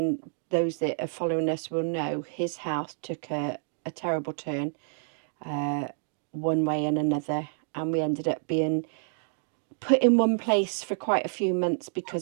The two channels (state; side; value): silent; left; digital silence